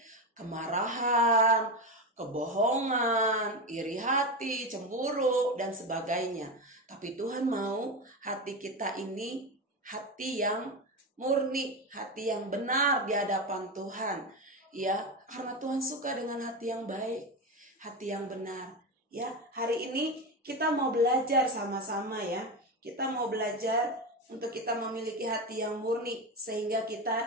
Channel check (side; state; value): both; normal; correlation 0.17